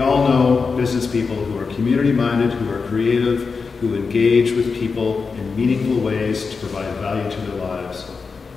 all know business people who are community-minded, who are creative, who engage with people in meaningful ways to provide value to their lives.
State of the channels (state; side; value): quieter; right; 4.9 dB